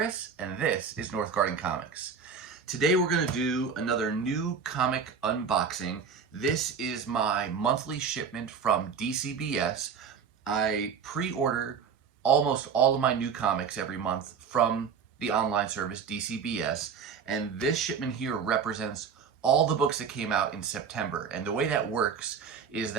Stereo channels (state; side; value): quieter; left; 6.3 dB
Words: and this is Northgarden Comics. Today we're going to do another new comic unboxing. This is my monthly shipment from Dcbs. I pre-order almost all of my new comics every month from the online service Dcbs, and this shipment here represents all the books that came out in September. And the way that works is